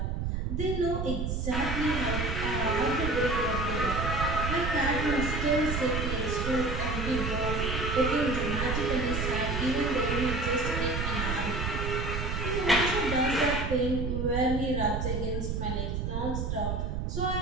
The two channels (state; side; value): noise; right; rumble, 1 dB below the sound